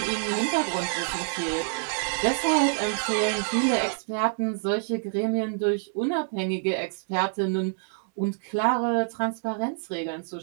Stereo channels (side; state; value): left; silent; digital silence